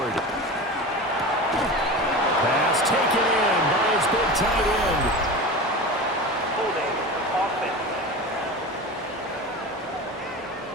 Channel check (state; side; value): normal; both; correlation 0.30